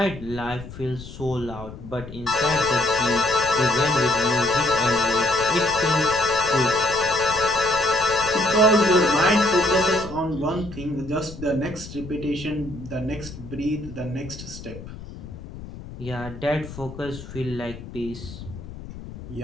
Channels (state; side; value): noise; left; rumble, 13 dB below the sound